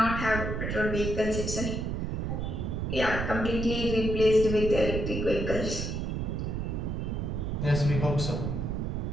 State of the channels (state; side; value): noise; right; rumble, 2 dB below the sound